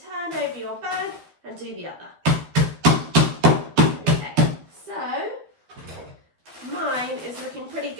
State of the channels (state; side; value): late; left; 12 ms